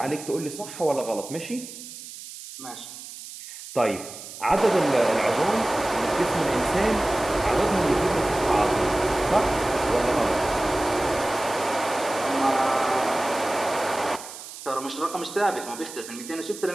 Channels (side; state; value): right; noise; hiss, 13 dB below the sound